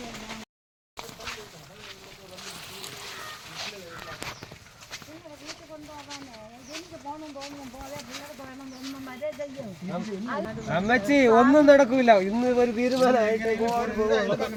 എല്ലാം വീട്ടിൽ കൊണ്ടുപോകാനേ എനിക്ക് പോകണം തോന്നും പോലെ പിള്ളേർക്ക് വേണം തോന്നും വരെ ചെയ്യും. അമ്മച്ചി ഒന്നും നടക്കൂല. ഇന്ന് ഒരു തീരുമാനമായിട്ട്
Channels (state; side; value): identical; both; correlation 1.00